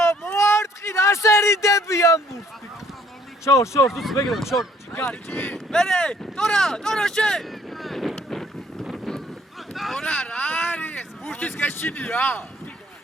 მოარტყი, რა სერიდები ამბობს. შორ, თუ მეგრე, შორ, ჯიგარი. მერე, ტორა შე. ტორა რა არის? ბურთის გეშინია.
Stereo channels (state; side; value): normal; both; correlation 0.62